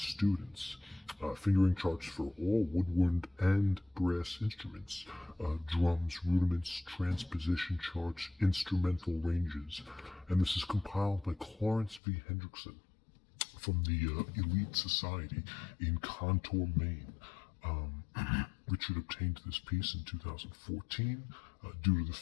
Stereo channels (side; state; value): right; drops out; at 12.0 s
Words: Fingering charts for all woodwind and brass instruments, drums, rudiments, transposition charts, instrumental ranges, and this is compiled by Clarence v. Hendrickson from the Elite Society in Contour, Maine. Richard obtained this piece in 2014 due to the